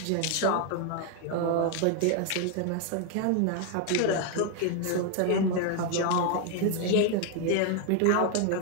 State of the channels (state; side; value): different; both; correlation 0.01